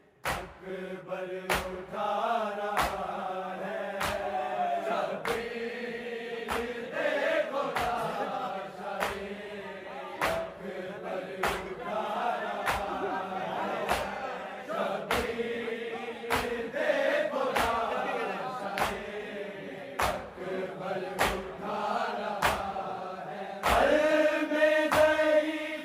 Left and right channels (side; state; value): both; identical; correlation 1.00